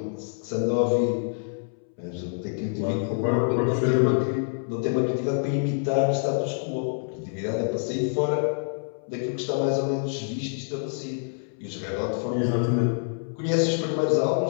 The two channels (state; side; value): silent; right; 61 dB below the other